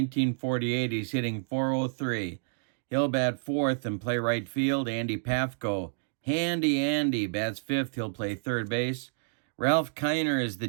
he's hitting 403. He'll bat fourth and play right field. Andy Pafko. Handy Andy bats fifth. He'll play third base. Ralph Kiner is the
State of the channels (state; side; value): silent; left; digital silence